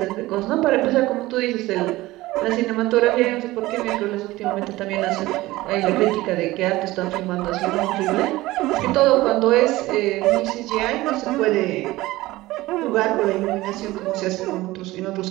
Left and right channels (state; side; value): quieter; left; 18.3 dB